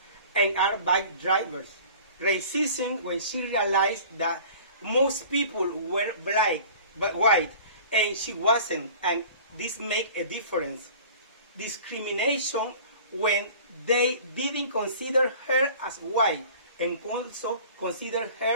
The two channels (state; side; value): inverted; both; correlation -0.44